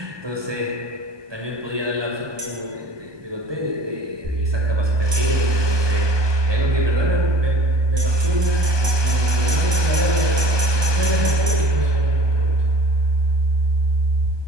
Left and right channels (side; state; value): left; late; 1.2 ms